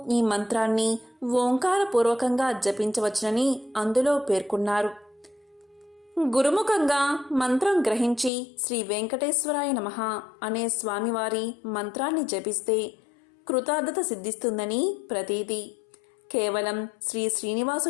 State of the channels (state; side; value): drops out; right; at 8.3 s